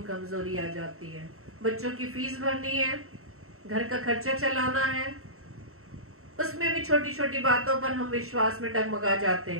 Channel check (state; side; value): late; left; 0.63 ms